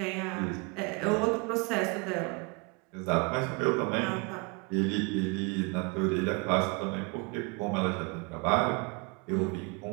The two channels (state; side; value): quieter; left; 30.0 dB